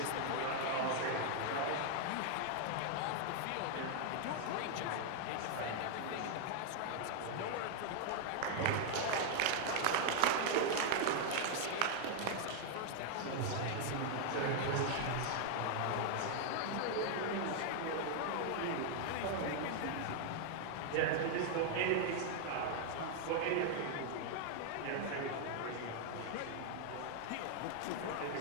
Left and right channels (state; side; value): different; both; correlation 0.00